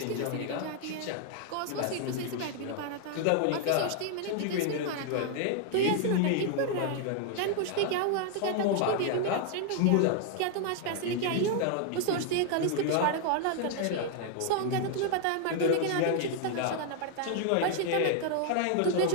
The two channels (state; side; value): different; both; correlation 0.00